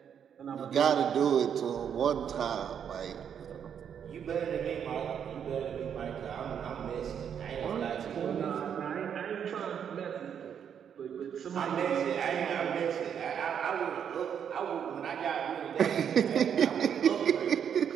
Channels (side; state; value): left; quieter; 8.2 dB